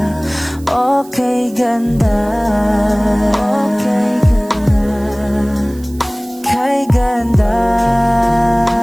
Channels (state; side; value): noise; right; hiss, 23 dB below the sound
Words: okay ganda, okay ganda, kay ganda,